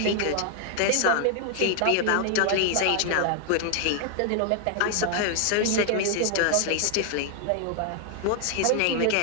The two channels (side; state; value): both; different; correlation 0.00